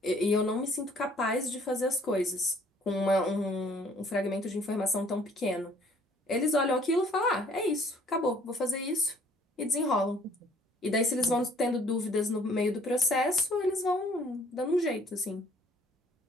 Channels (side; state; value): both; normal; correlation 0.58